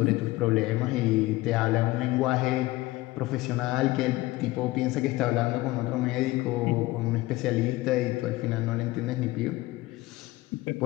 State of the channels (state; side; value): quieter; right; 19.0 dB